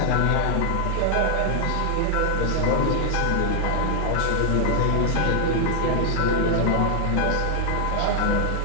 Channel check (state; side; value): different; both; correlation 0.00